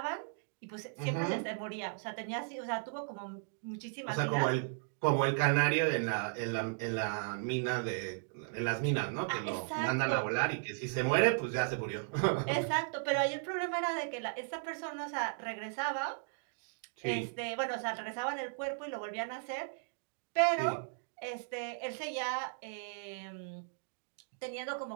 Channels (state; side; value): silent; left; digital silence